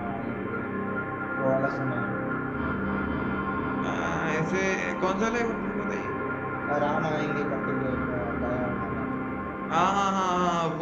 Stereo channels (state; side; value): identical; both; correlation 1.00